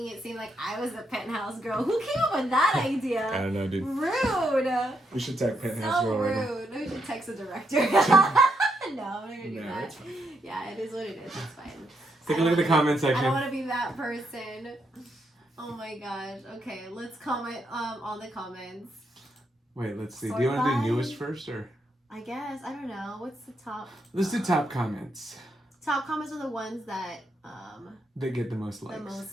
it seem like I was the penthouse girl. Who came up with that idea? I don't know, dude. Rude. We should tag penthouse So girl right now. rude. We should text the director. No, I'm not gonna do No, that. it's fine. Yeah, it is what it is. It's fine. Take a look at the comment I don't section. want to be that person. Oh my gosh. Okay, let's comment on the comments. Wait, let's see. Sort Do you want to by- do newest first, or I guess. I don't know. What's the top? let's do top comments? Top comments are the ones that They get the most likes. the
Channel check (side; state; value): both; normal; correlation 0.79